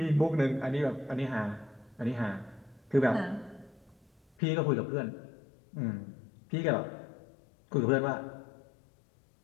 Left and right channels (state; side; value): drops out; right; at 4.2 s